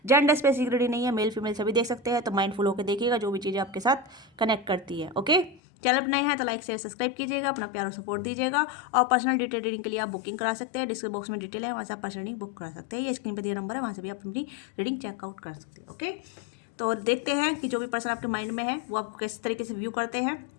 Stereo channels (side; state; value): right; drops out; at 5.6 s